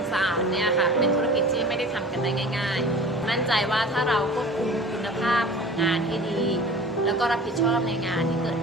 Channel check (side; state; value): both; normal; correlation 0.41